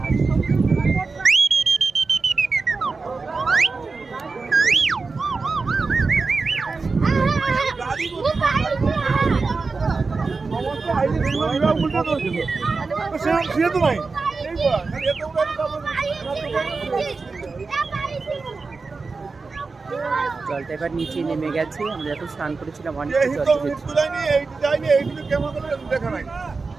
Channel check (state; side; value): quieter; left; 4.2 dB